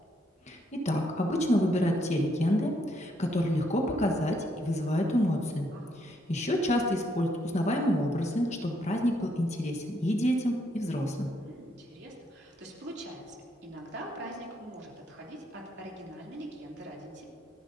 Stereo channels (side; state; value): both; normal; correlation 0.74